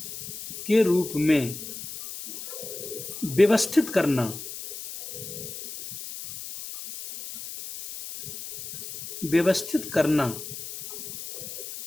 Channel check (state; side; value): noise; left; hiss, 10 dB below the sound